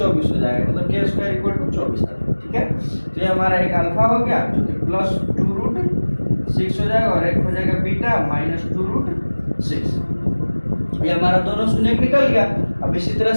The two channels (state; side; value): inverted; both; correlation -1.00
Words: हो जाएगा, मतलब k² इक्वल टू 24 आता है। ठीक है, तो ये हमारा एक अल्फा हो गया जो कि प्लस 2 रूट 6 हो जाएगा और एक हो जाएगा बीटा माइनस 2 रूट 6। ये हमारा दोनों शून्य निकल गया। अब इसी तरह